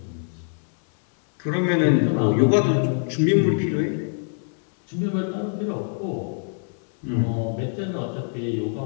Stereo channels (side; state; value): right; silent; 63 dB below the other